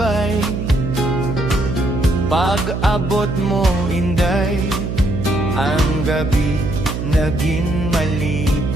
Pag-abot mo, inday, ang gabi naging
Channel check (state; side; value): noise; right; hum, 3 dB below the sound